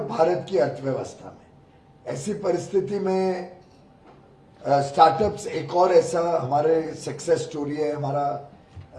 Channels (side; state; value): both; identical; correlation 1.00